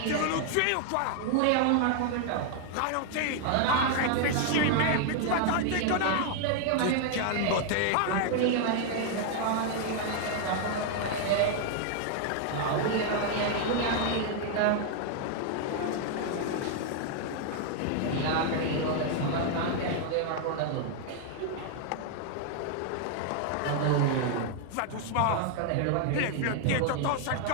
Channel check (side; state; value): both; different; correlation 0.00